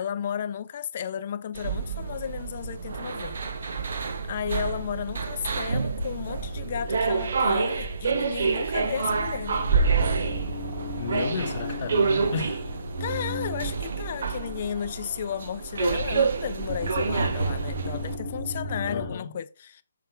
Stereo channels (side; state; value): both; inverted; correlation -0.68